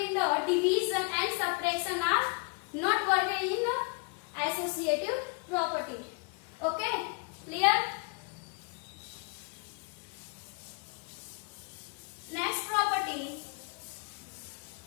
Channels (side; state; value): right; quieter; 34.7 dB